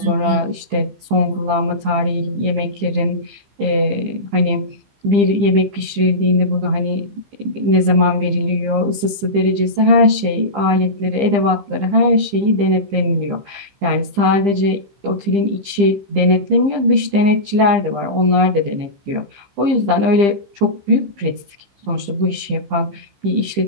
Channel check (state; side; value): late; left; 15 ms